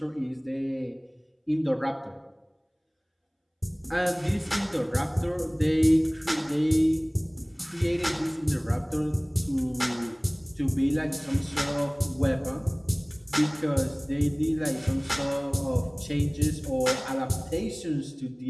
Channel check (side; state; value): both; identical; correlation 1.00